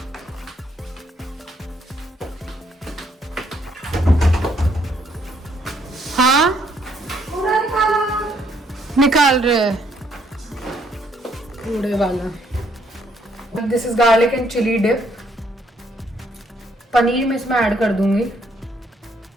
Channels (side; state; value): both; normal; correlation 0.69